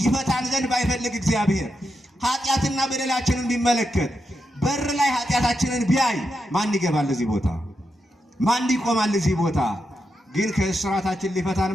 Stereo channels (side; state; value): both; normal; correlation 0.85